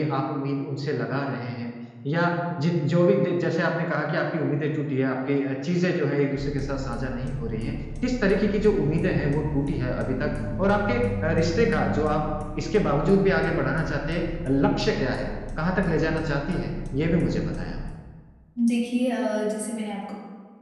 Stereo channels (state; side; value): identical; both; correlation 1.00